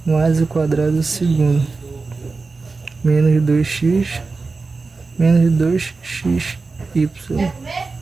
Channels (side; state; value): left; quieter; 4.0 dB